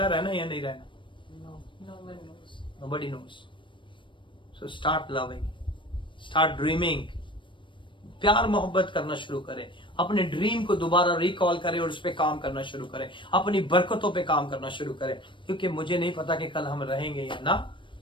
रहना या नहीं रहना? No one knows. Nobody knows. So start loving, start dreaming. प्यार मोहब्बत करना शुरू करें. अपने ड्रीम को दोबारा रिकॉल करें और उस पर काम करना शुरू करें. अपनी बरकतों पे काम करना शुरू करें, क्योंकि मुझे नहीं पता कि कल हम रहेंगे या ना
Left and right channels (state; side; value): late; right; 0.24 ms